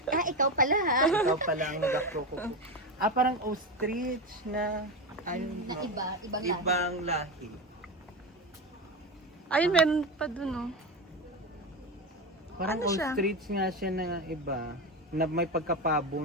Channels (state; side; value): normal; both; correlation 0.17